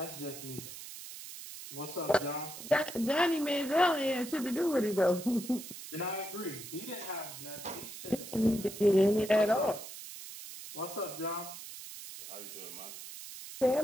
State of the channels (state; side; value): noise; right; hiss, 12 dB below the sound